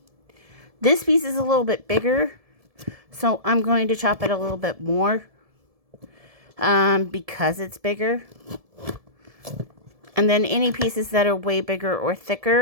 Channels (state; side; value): late; left; 1.7 ms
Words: This piece is a little bit bigger, so I'm going to chop it a little bit more because it's bigger. And then any pieces that are way bigger or